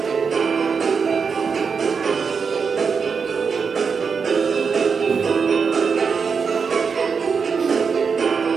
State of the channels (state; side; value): quieter; left; 5.7 dB